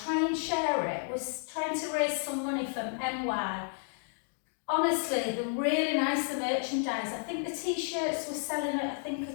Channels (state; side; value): silent; right; 57 dB below the other